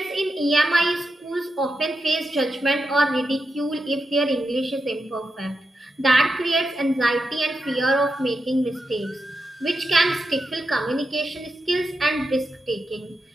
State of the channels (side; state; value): both; normal; correlation 0.88